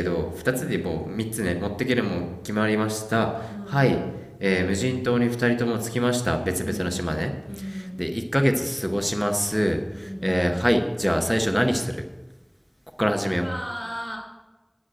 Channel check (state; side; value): identical; both; correlation 1.00